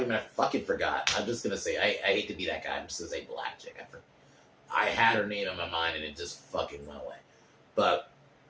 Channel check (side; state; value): both; identical; correlation 1.00